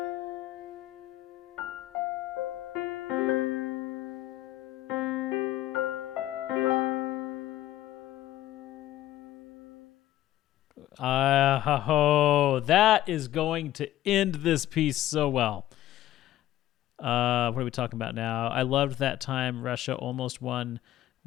That is going to end this piece so well. What are we talking about now? I loved that time Russia almost won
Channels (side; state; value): right; quieter; 13.9 dB